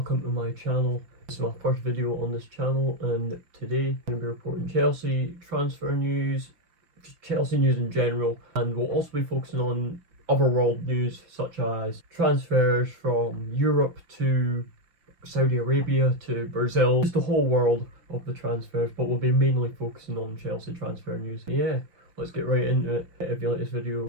to my channel. This is my first video on this channel, and today I'm going to be reporting Chelsea transfer news, just Chelsea news in general, and we'll also be focusing on other world news such as transfers from Europe to Saudi Arabia to Brazil, just the whole world of the transfers, but we'll be mainly focusing on Chelsea transfer news. Yeah, let's get right into it. If you like this video,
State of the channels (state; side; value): late; left; 5.7 ms